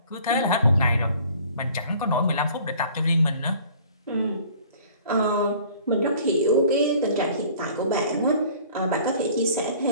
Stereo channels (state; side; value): inverted; both; correlation -0.51